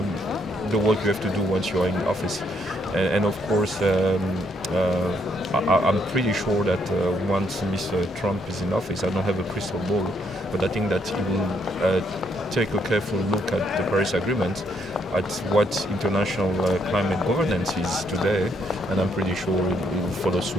the work you have to do once you are in office. And of course, I'm pretty sure that once Mr. Trump is in office, I don't have a crystal ball, but I think that he will take a careful look at the Paris Agreement, at what international climate governance is today, and I'm pretty sure it will follow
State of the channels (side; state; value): both; normal; correlation 0.72